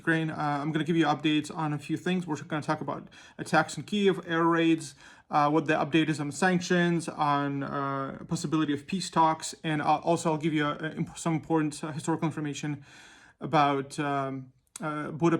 I'm going to give you updates on a few things. We're going to talk about attacks in Kyiv, air raids, what the update is on sanctions, on possibility of peace talks, and I'll give you some important historical information about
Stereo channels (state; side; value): identical; both; correlation 1.00